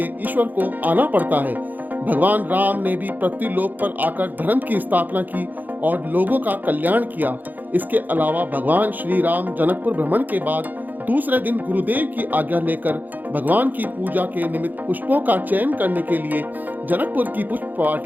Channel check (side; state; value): left; late; 0.085 ms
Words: ईश्वर को आना पड़ता है। भगवान राम ने भी पृथ्वी लोक पर आकर धर्म की स्थापना की और लोगों का कल्याण किया। इसके अलावा भगवान श्री राम जनकपुर भ्रमण के बाद दूसरे दिन गुरुदेव की आज्ञा लेकर भगवान की पूजा के निमित्त पुष्पों का चयन करने के लिए जनकपुर की पुष्प